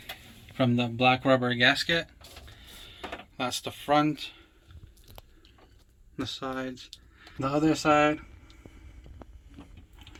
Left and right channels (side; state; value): both; identical; correlation 1.00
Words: from the black rubber gasket. That's the front, the sides, the other side,